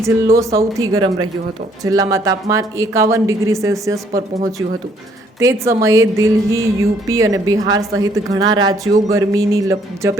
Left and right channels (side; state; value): both; normal; correlation 0.65